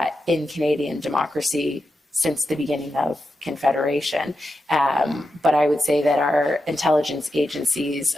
in Canadian democracy since the beginning of Confederation. But I would say that our intelligence agencies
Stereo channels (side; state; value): both; normal; correlation 0.88